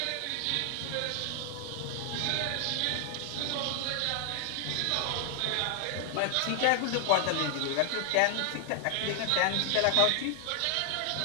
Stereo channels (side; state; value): both; different; correlation 0.00